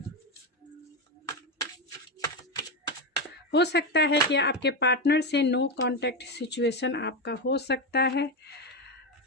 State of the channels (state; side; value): normal; both; correlation 0.12